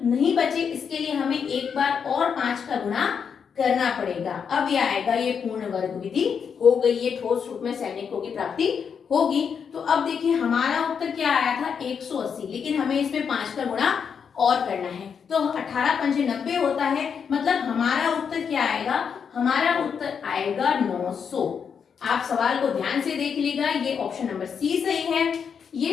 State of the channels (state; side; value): quieter; right; 6.8 dB